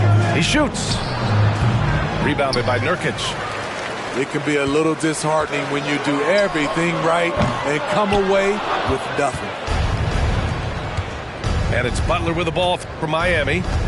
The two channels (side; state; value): both; identical; correlation 1.00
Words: He shoots. Rebounded by Nurkic. It can be a little disheartening when you do everything right and come away with nothing. And it's Butler with the ball for Miami.